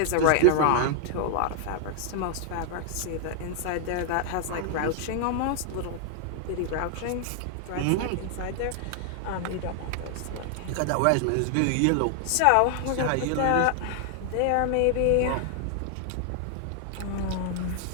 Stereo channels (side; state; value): both; different; correlation 0.00